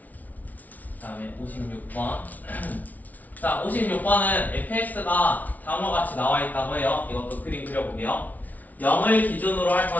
다음에 56번. 자, 56번은 fx가 다음과 같이 나와 있다고 해요. 이것도 그림 그려볼게요. 0을 기준으로 할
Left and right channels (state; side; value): late; right; 0.076 ms